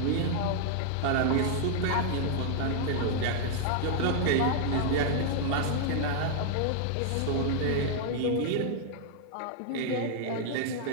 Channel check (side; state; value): both; different; correlation -0.01